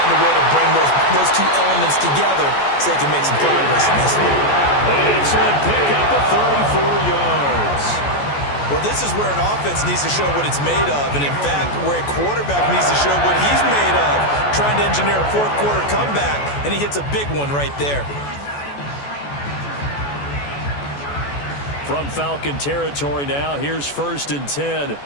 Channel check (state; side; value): late; right; 14 ms